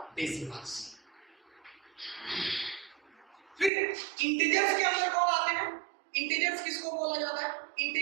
डेसिमल्स। फिर इंटीजर्स के अंदर कौन आते हैं? इंटीजर्स किसको बोला जाता है?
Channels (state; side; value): drops out; left; at 3.7 s